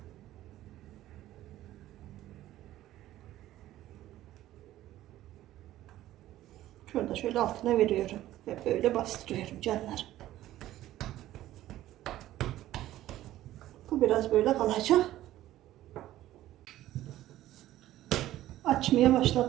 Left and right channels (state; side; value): quieter; left; 14.3 dB